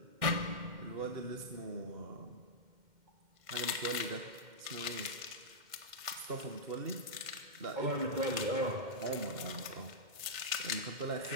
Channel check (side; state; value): left; late; 2.1 ms